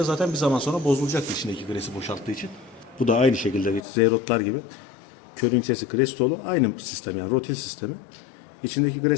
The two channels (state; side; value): drops out; right; at 3.8 s